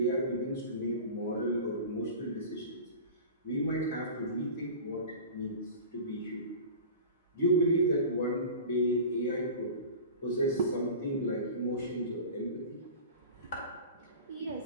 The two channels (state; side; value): inverted; both; correlation -0.35